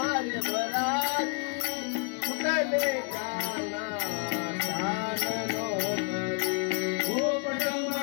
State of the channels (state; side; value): quieter; right; 38.7 dB